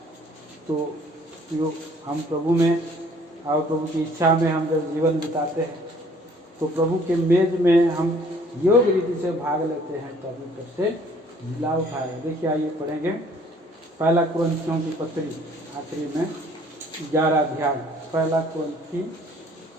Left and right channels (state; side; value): normal; both; correlation 0.57